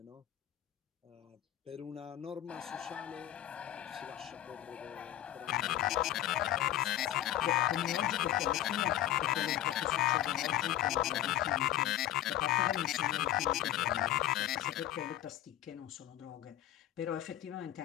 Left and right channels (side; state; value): right; quieter; 13.0 dB